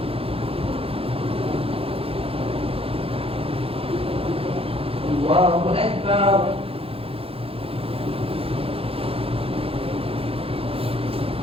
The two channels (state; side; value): late; left; 0.27 ms